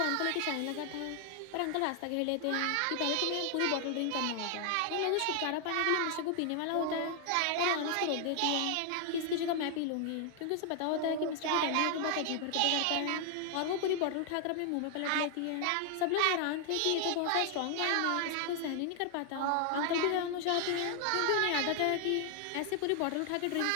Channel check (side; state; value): both; different; correlation 0.00